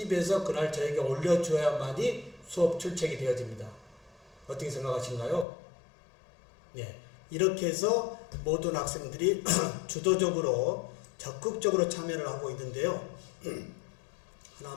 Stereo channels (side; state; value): right; drops out; at 5.5 s